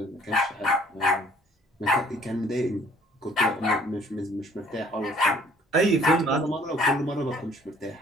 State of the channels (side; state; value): both; normal; correlation 0.58